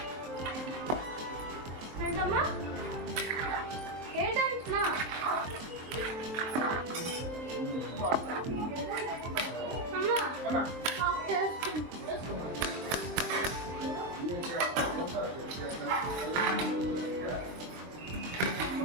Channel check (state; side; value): late; left; 23 ms